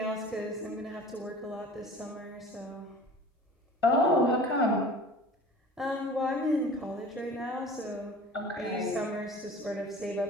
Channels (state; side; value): normal; both; correlation 0.42